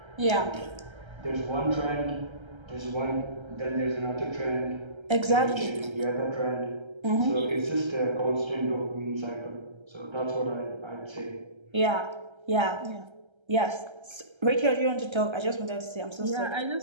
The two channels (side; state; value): left; late; 1.3 ms